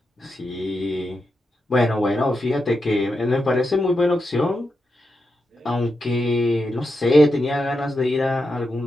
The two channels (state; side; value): normal; both; correlation 0.87